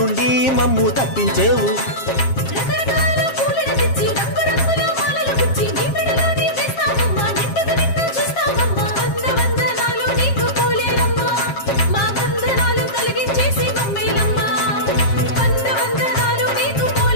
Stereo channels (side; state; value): right; late; 7.4 ms